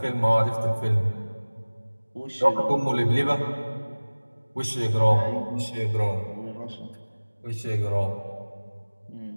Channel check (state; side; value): inverted; both; correlation -1.00